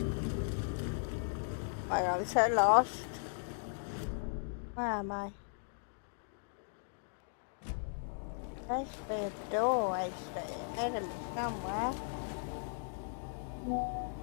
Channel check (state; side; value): silent; right; digital silence